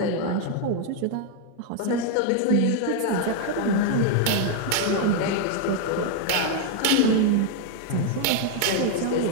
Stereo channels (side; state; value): both; different; correlation 0.00